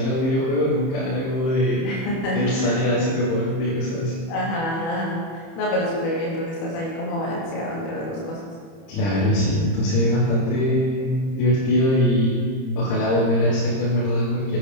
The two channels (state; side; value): late; right; 30 ms